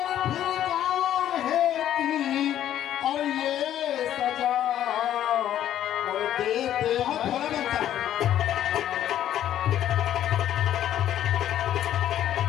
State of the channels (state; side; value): quieter; right; 11.4 dB